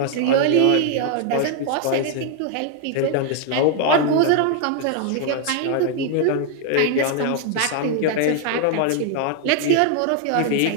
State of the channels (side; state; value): both; different; correlation 0.00